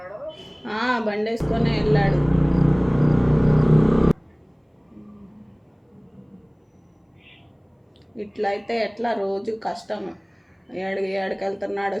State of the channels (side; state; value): both; identical; correlation 1.00